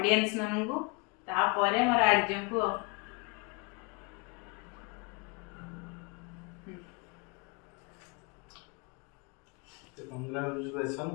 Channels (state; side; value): quieter; right; 29.9 dB